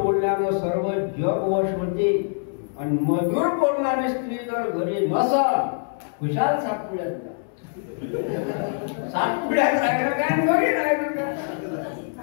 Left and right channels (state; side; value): silent; right; digital silence